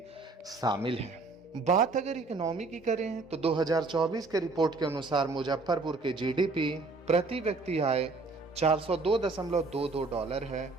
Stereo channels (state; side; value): quieter; left; 3.7 dB